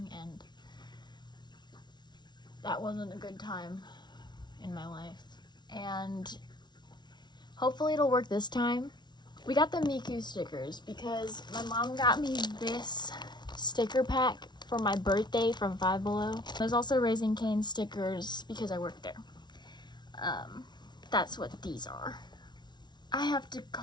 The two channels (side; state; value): right; late; 0.20 ms